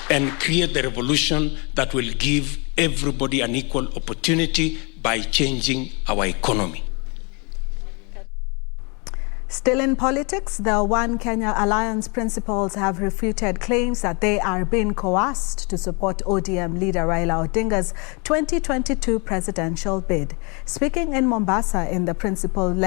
and create the revolution that will give everybody an equal opportunity by changing our economy. Still in politics, the One Kenya Alliance principals have refuted claims that they are being coerced to support ODM leader Raila Odinga's 2022 presidential bid. Speaking in Mombasa, in the principle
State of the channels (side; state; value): right; quieter; 32.1 dB